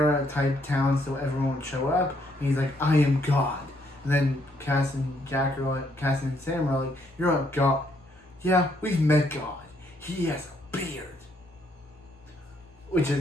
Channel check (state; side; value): normal; both; correlation 0.71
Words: type town, so everyone would show up, and he's like, I am God. And then Cass and Sam are like, you're not God. Yeah, we've met God. He has a beard. Which